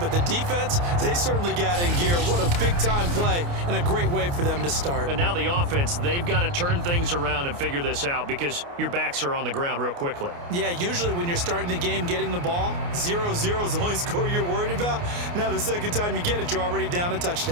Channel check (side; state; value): left; late; 29 ms